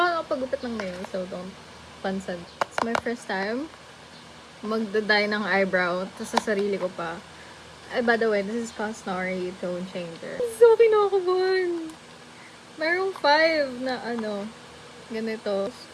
nakapagupit ng nails, so don't pansin. It's my first time magda-dye ng eyebrow, tapos sa sarili ko pa. By the way, this is Cosnari Tone Changer. So kinakabahan! Merong 5 na ganito.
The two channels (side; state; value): both; identical; correlation 1.00